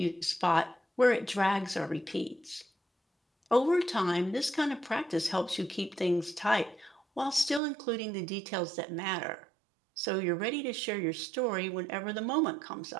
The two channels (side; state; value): left; drops out; at 7.6 s